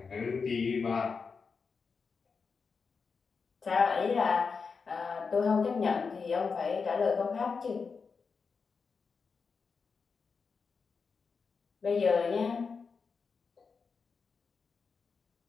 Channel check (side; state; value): right; quieter; 5.2 dB